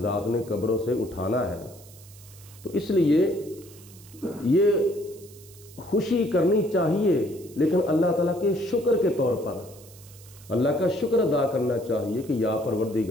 ذات نے قبروں سے اٹھانا ہے۔ تو اس لیے یہ خوشی کرنی چاہیے، لیکن اللہ تعالیٰ کے شکر کے طور پر اللہ کا شکر ادا کرنا چاہیے کہ یا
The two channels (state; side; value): noise; right; hiss, 22 dB below the sound